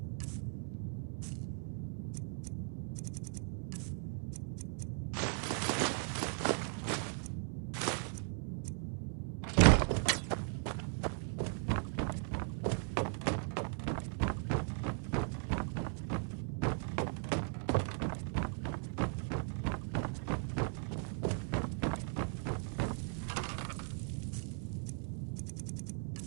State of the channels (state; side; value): silent; left; 52 dB below the other